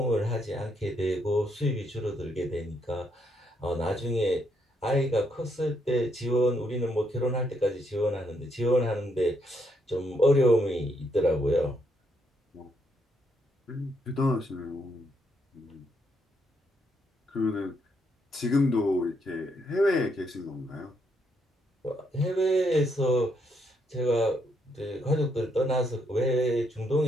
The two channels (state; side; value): normal; both; correlation 0.76